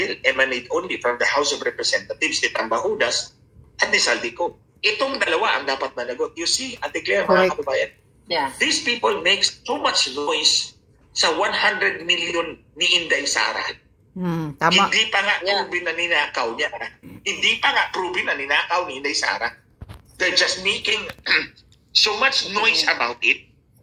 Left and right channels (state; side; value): identical; both; correlation 1.00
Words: emanate only from the House of Representatives ni Tambahudas at ni Saldico. Itong dalawa ang dapat managot. You see, Ate Claire, mga kababayan, these people make so much noise sa 100 million ni Inday Sara. Tama. Hindi pa nga proven na ninakaw niya. Hindi pa nga proven na ninakaw ni Inday Sara. They're just making so much noise about it.